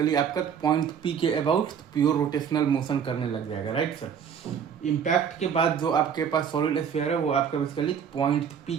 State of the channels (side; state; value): left; quieter; 7.6 dB